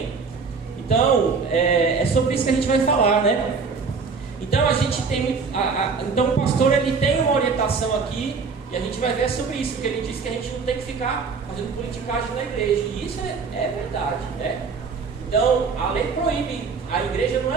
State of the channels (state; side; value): quieter; left; 5.0 dB